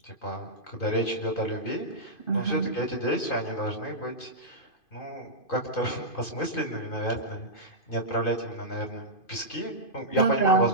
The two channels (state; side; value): late; right; 2.5 ms